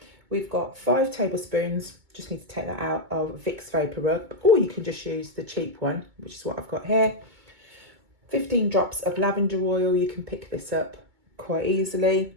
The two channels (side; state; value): left; late; 2.2 ms